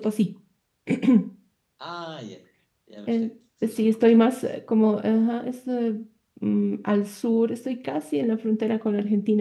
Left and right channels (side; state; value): both; identical; correlation 1.00